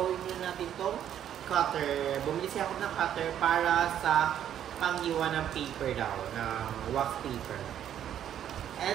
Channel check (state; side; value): quieter; left; 10.2 dB